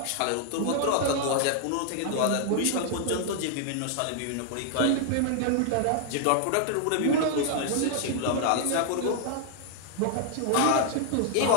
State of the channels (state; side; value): different; both; correlation 0.00